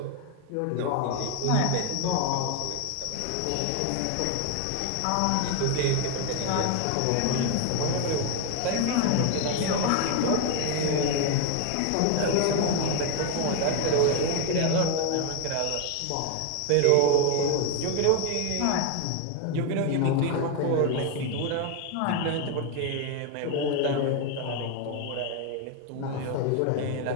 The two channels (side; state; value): both; different; correlation 0.01